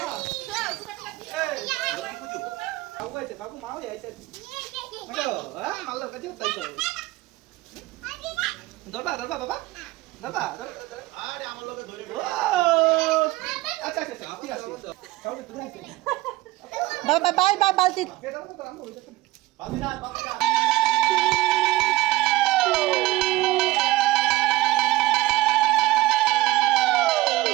বাবা বাই বাই বালতি।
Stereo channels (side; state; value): left; quieter; 18.0 dB